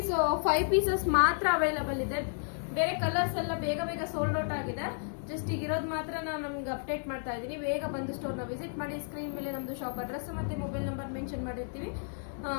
ಪೀಸಸ್ ಮಾತ್ರ ಅವೈಲಬಲ್ ಇದೆ. ಬೇರೆ ಕಲರ್ಸ್ ಎಲ್ಲ ಬೇಗ ಬೇಗ ಸೋಲ್ಡ್ ಔಟ್ ಆಗಿದೆ. ಜಸ್ಟ್ ಈಗ ಇರೋದು ಮಾತ್ರ ನಾನು ನಮ್ಗೆ ಅಪ್ಡೇಟ್ ಮಾಡ್ತಾ ಇದ್ದೀನಿ. ಬೇಗ ಬಂದು ಸ್ಟೋರ್ನ ವಿಸಿಟ್ ಮಾಡಿ. ಸ್ಕ್ರೀನ್ ಮೇಲೆ ನಮ್ದು ಶಾಪ್ ಅಡ್ರೆಸ್ ಮತ್ತೆ ಮೊಬೈಲ್ ನಂಬರ್ ಮೆನ್ಷನ್ ಮಾಡಿರ್ತೀವಿ.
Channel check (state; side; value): silent; right; 56 dB below the other